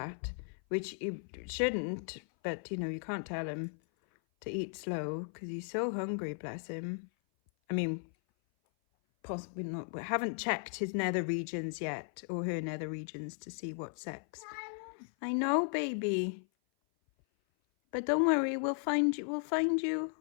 which he shouldn't, but you know, you can't tell him to eat slow because he's so hungry, bless him. I mean, possibly not, we haven't checked his nether regions yet, or her nether regions, to see what sex. I know, baby. But don't worry, we'll find you,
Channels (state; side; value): silent; right; 54 dB below the other